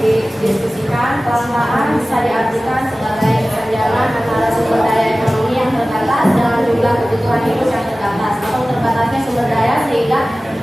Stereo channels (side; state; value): both; normal; correlation 0.97